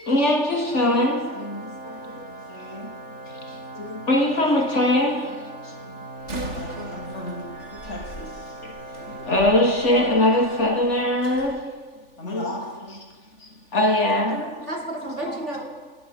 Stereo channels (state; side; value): late; right; 3.4 ms